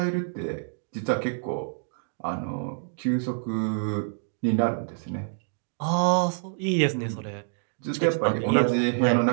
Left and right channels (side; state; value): left; silent; digital silence